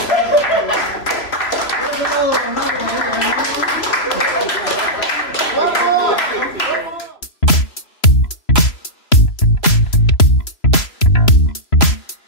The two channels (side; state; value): right; late; 3.0 ms